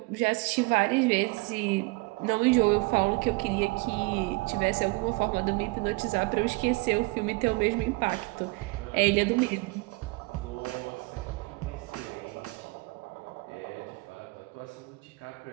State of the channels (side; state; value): left; quieter; 24.9 dB